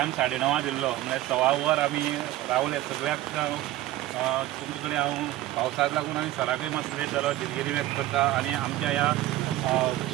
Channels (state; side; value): quieter; left; 15.3 dB